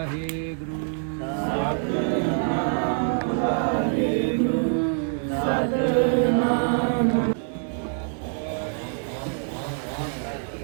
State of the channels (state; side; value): silent; left; 62 dB below the other